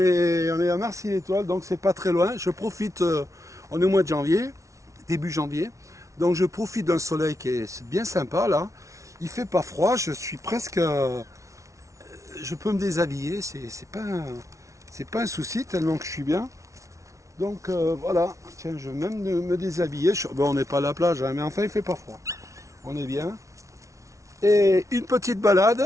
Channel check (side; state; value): left; late; 0.15 ms